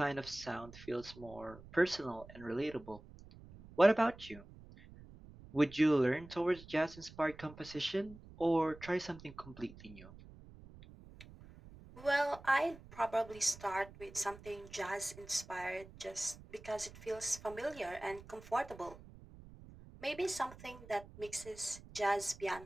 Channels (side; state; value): right; noise; rumble, 18 dB below the sound